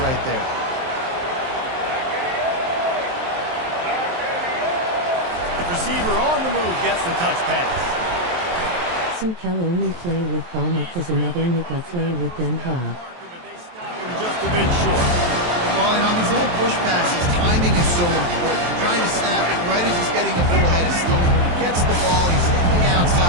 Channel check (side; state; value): left; late; 23 ms